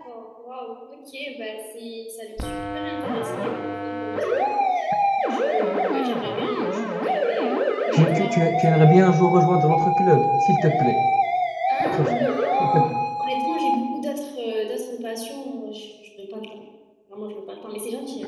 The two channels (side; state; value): both; identical; correlation 1.00